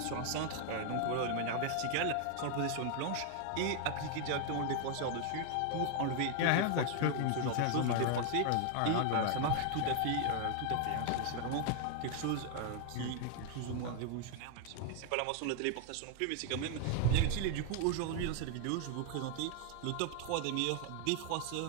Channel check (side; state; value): both; different; correlation 0.00